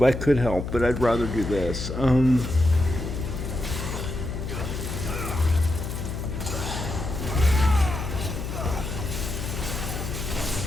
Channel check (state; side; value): noise; left; hum, 5 dB below the sound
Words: could help, but I'd rather do this. I